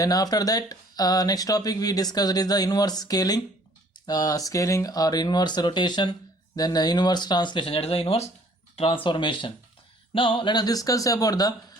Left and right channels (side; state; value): both; normal; correlation 0.56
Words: after that next topic we discussed is the inverse scaling, scaling or inverse rotation, then inverse translation, that is the inverse transformation. Now let us discuss about the